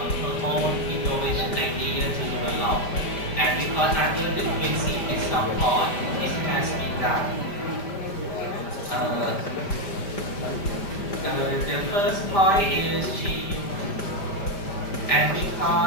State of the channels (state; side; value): late; right; 5.0 ms